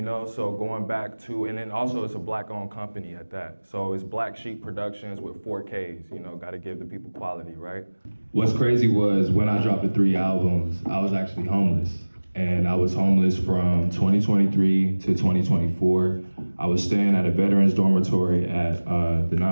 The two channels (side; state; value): both; inverted; correlation -1.00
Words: know, so going back to, and then also it's a black-owned company at that. So it's Black Sheep Productions with 4Ks, you know, gotta give the people quality, right? What's crazy was when I dropped the 3 albums, I was actually homeless. And I was homeless from 2023 to 2024. I was staying at a veterans dormitory at the